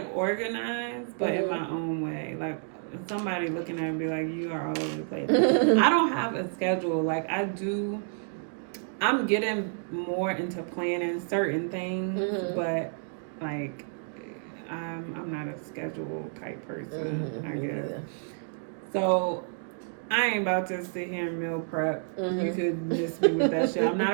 organized, but in my own way. Like somebody looking at me and be like, you are all over the place. I don't have a schedule. Like I'm getting more into planning certain things, but like I'm not a schedule type person, I guess. Yeah. So I ain't about to sit here and meal prep. You could miss me with that shit. I'm not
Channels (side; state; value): left; silent; digital silence